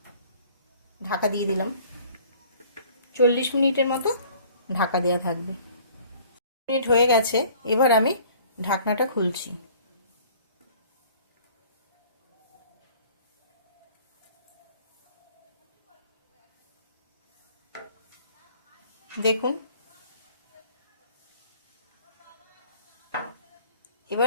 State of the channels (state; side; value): inverted; both; correlation -0.52